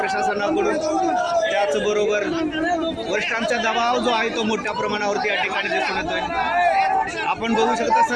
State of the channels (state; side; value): identical; both; correlation 1.00